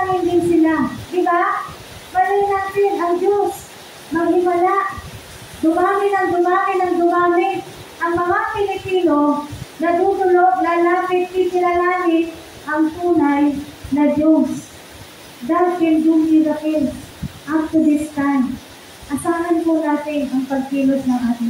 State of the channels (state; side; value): identical; both; correlation 1.00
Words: din sila. Diba? Malay natin, ang Diyos, maghimala, dumami ng dumami, ang mga Pilipino, natutulog, lalapit, kikilalangin, ang tunay na Diyos. God can do miracles up to this time. Asahan po natin ang pagkilos ng ating